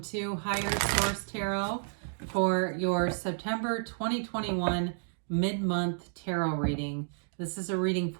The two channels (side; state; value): left; silent; digital silence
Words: Higher Source Tarot for your September 2021 mid-month tarot reading. This is a reading